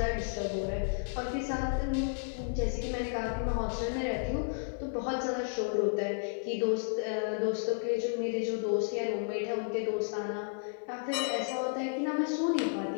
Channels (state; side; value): silent; right; 56 dB below the other